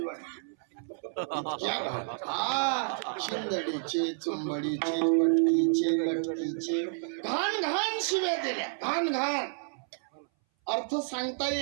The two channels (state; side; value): silent; left; 58 dB below the other